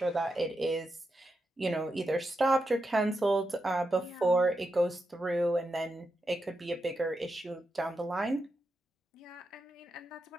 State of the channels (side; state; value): both; normal; correlation 0.87